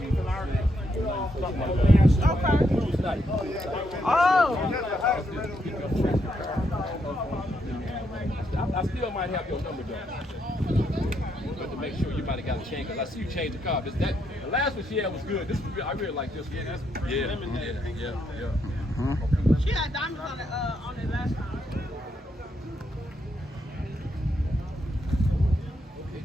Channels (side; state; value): both; normal; correlation 0.78